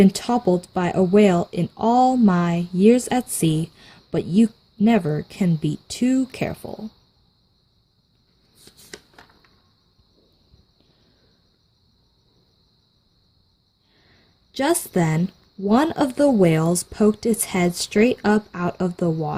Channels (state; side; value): identical; both; correlation 1.00